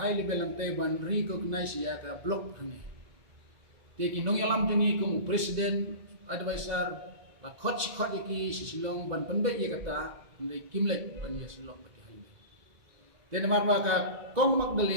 level lantai ban recognize ya ka block hane te kinong yalam tungi kong president advisor la khot ki sisilong ban pendek ye kata ndai kimlek ban ye silong pati halme den marwa ka kong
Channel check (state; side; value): late; left; 2.2 ms